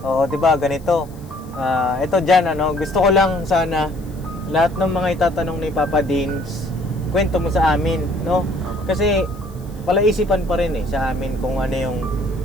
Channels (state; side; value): noise; left; hiss, 26 dB below the sound